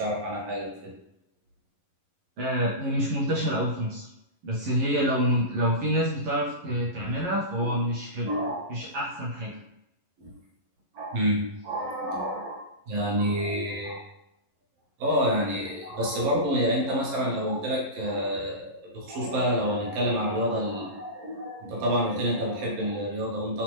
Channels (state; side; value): late; left; 11 ms